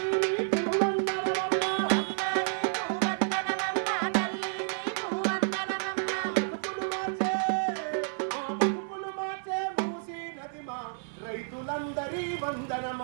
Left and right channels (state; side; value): silent; left; 58 dB below the other